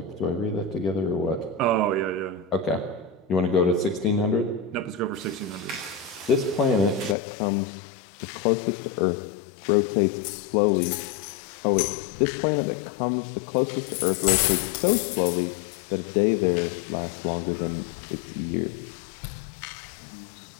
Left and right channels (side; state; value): right; drops out; at 7.2 s